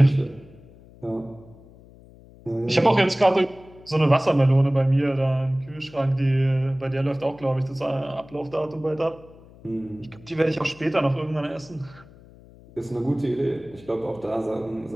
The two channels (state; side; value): noise; left; hum, 23 dB below the sound